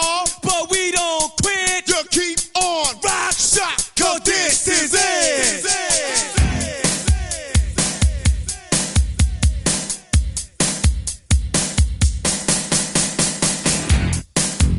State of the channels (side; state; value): both; identical; correlation 1.00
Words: But we don't quit. You keep on rock shot, cause this is it.